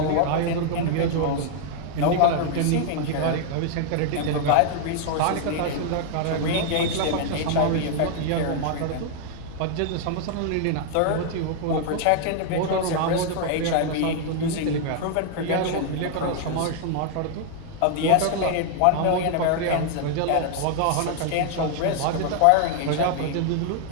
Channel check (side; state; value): both; different; correlation 0.00